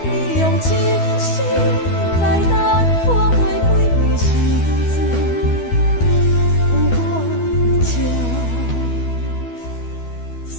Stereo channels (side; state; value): right; late; 12 ms